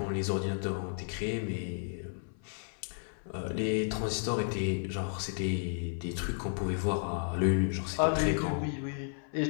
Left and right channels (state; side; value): silent; right; 56 dB below the other